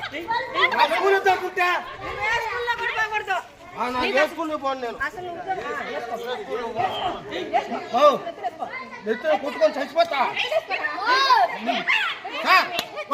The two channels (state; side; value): identical; both; correlation 1.00